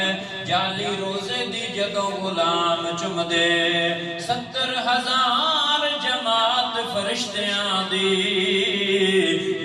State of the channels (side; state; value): both; identical; correlation 1.00